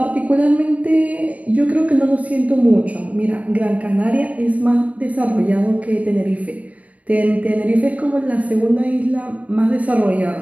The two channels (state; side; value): late; left; 0.070 ms